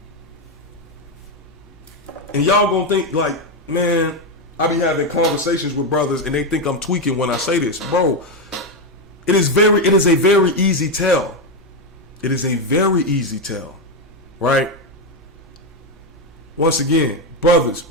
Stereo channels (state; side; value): normal; both; correlation 0.08